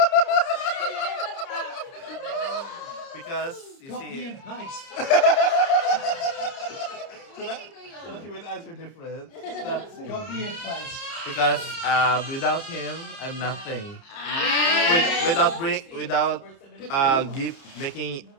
Because you Copy see, and paste. so that you will answer different. That's it. Copy and paste. Because without him, I'm nothing. Without making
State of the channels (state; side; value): late; right; 30 ms